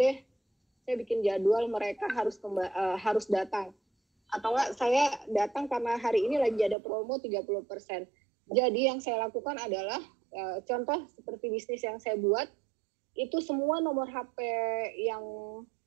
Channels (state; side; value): drops out; left; at 6.8 s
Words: Saya bikin jadwal, mereka harus datang. Atau enggak, saya datang karena hari ini lagi ada promo 30%. Jadi yang saya lakukan adalah, contoh seperti bisnis yang saya buat, itu semua nomor HP yang